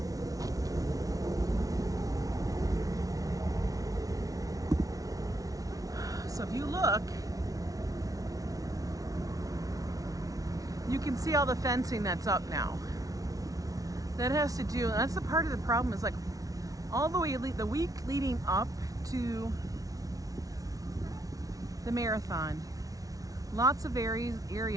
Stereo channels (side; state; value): left; late; 0.18 ms